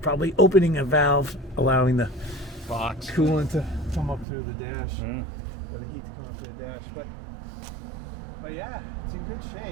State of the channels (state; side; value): drops out; left; at 4.2 s